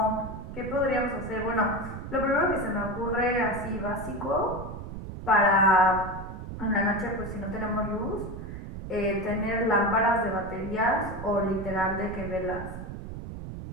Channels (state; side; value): noise; right; rumble, 9 dB below the sound